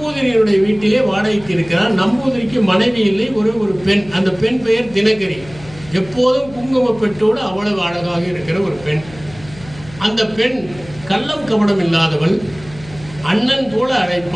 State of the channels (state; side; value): noise; left; hum, 19 dB below the sound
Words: வீட்டிலே வாடகைக்கு இருக்கிறார். நம்பூதிரிக்கு மனைவி இல்லை, ஒரு பெண். அந்த பெண் பெயர் தினகரி. எப்போதும் குங்கும பெட்டோடு அவ்வளவு அழகாக இருக்கிற ஒரு பெண். அந்த பெண் கள்ளம் கபடம் இல்லாதவள். அண்ணன் போல